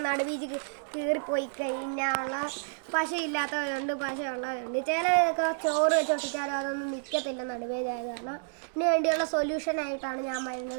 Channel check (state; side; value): silent; left; 58 dB below the other